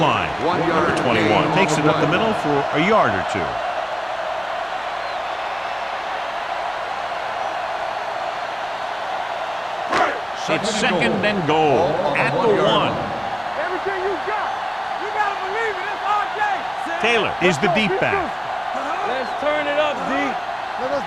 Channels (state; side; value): identical; both; correlation 1.00